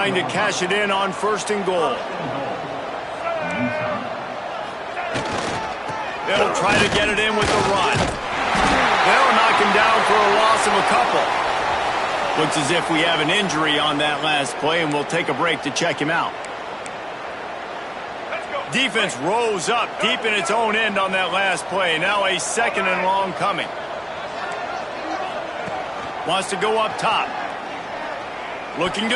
to cash it in on 1st and goal. They'll try to get it in with the run. They'll knock him down for a loss of a couple. Looks as if we have an injury on that last play, and we'll take a break to check him out. Defense rose up deep in its own end on that last play. Now a 2nd and long coming. Wants to go up top. Looking to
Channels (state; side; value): identical; both; correlation 1.00